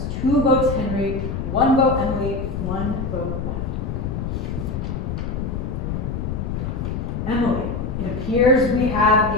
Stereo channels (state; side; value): noise; left; rumble, 3 dB below the sound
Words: 2 votes Henry, 1 vote Emily, 1 vote left. Emily. It appears we have